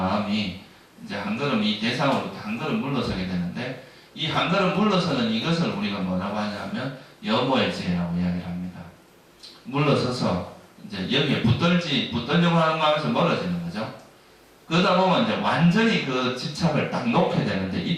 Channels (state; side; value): identical; both; correlation 1.00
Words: 이제 한 걸음 이 대상으로 한 걸음 물러서게 되는데 이 한 걸음 물러서는 이것을 우리가 뭐라고 하냐면 여모의 지혜라고 이야기를 합니다. 물러서서 이제 여기에 붙들려고 하는 마음에서 멀어지는 거죠. 그러다 보면 이제 완전히 그 집착을 딱 놓게 되는데